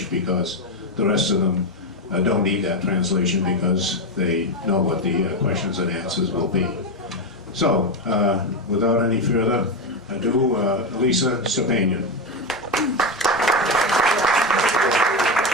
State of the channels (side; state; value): both; normal; correlation 0.11